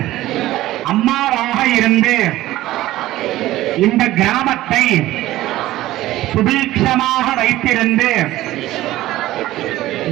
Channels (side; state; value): left; quieter; 15.8 dB